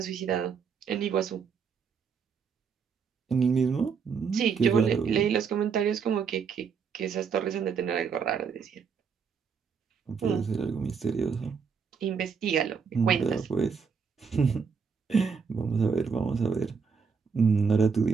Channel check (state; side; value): quieter; left; 6.0 dB